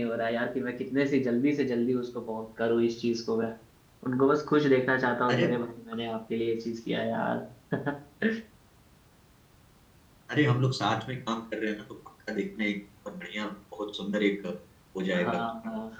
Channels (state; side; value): identical; both; correlation 1.00